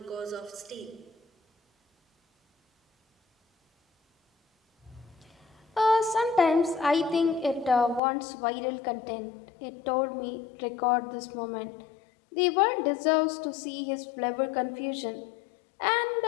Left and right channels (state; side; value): drops out; right; at 8.0 s